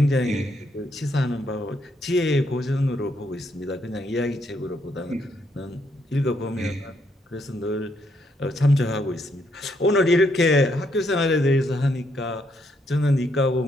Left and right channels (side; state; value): both; normal; correlation 0.74